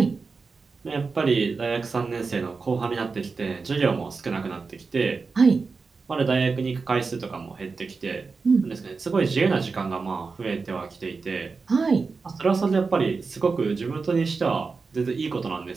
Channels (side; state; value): left; quieter; 4.5 dB